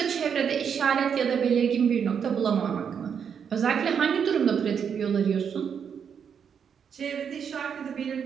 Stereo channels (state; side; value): quieter; left; 7.3 dB